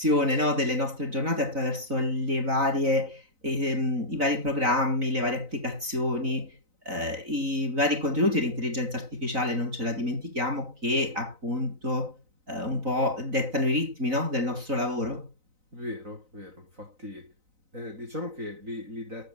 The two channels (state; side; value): late; left; 3.9 ms